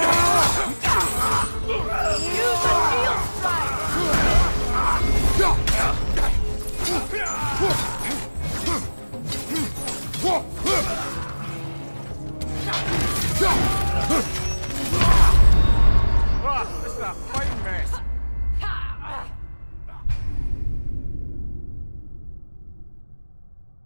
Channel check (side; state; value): both; inverted; correlation -1.00